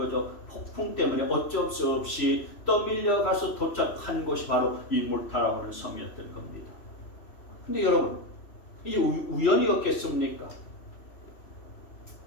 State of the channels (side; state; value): right; late; 3.0 ms